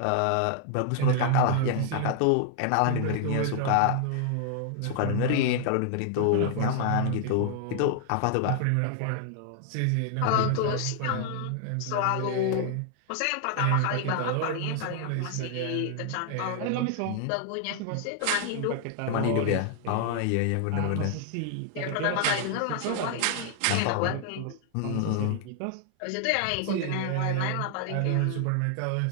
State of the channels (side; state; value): both; different; correlation 0.00